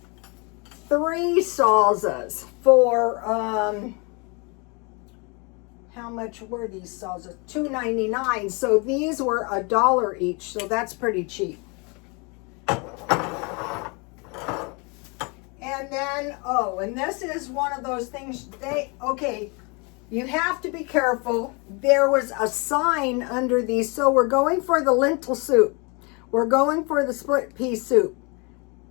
3 salsas for, how much were these salsas? $2.99. So these were $1 each. So that's pretty cheap. And then, and this is one of those things you have to be careful. There was a sign under these. So we're going for the lentil soup. We're going for the split pea soup.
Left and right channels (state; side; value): quieter; right; 30.8 dB